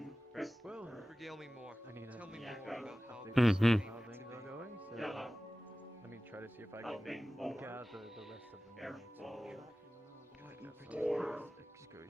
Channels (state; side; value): normal; both; correlation 0.97